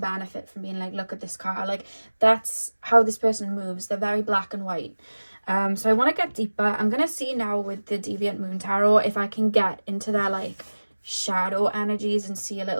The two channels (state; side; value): inverted; both; correlation -1.00